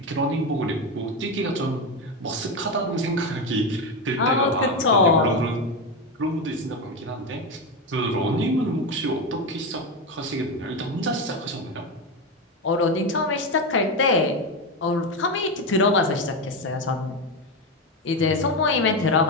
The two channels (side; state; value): both; normal; correlation 0.14